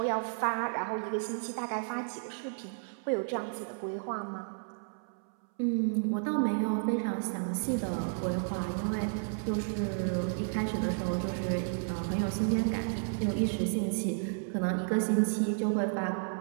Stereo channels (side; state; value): left; silent; 56 dB below the other